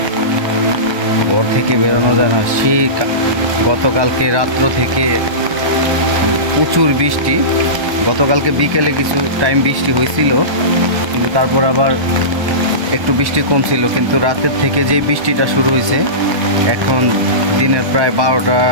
ঘর থেকে বেরোনো যায় না। সেই গতকালকে রাত্র থেকে প্রচুর বৃষ্টি। গতকালকে বিকেলে কিছু টাইম বৃষ্টি হয়েছিল, কিন্তু তারপর আবার একটু বৃষ্টি কম ছিল। কিন্তু রাতের থেকে যে বৃষ্টিটা শুরু হয়েছে, এখন দিনের প্রায়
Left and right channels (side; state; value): left; late; 1.3 ms